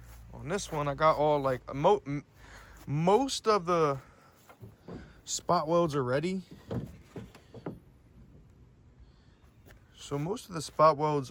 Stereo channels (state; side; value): identical; both; correlation 1.00